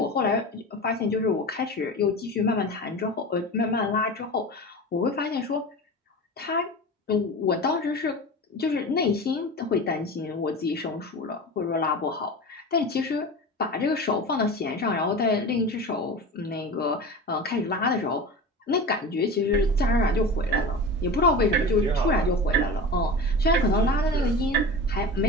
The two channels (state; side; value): normal; both; correlation 0.31